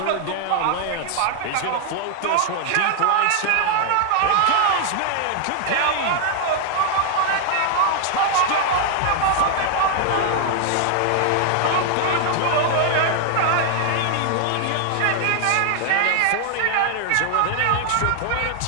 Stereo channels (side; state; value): both; different; correlation 0.00